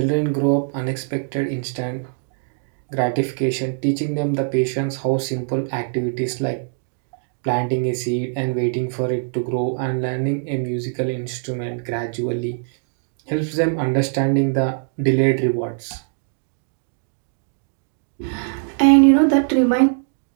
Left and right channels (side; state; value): left; silent; digital silence